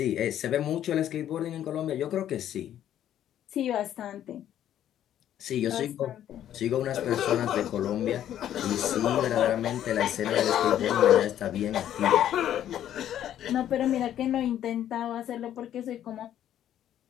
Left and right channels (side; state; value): right; quieter; 11.1 dB